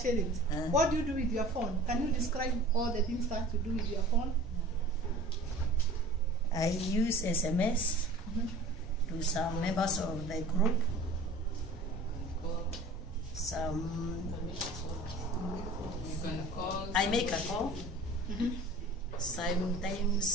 What do you do with your phone? Can you describe all the things that you do with your phone? I use SMS to some members of the group. You can call. I make a call.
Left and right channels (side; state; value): right; noise; rumble, 11 dB below the sound